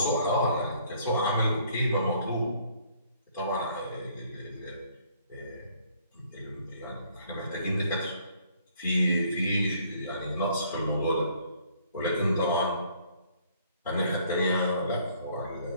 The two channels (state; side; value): inverted; both; correlation -0.61